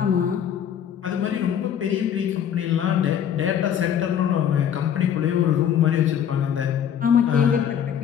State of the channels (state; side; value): quieter; right; 9.0 dB